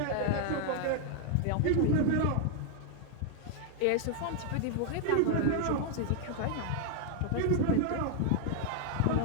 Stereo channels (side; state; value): both; different; correlation 0.00